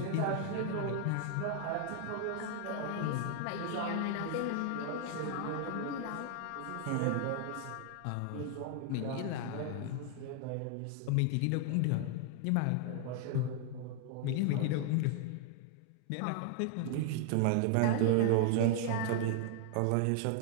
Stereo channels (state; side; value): different; both; correlation 0.00